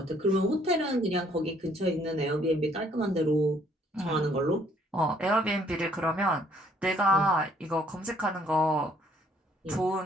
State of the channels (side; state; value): both; normal; correlation 0.64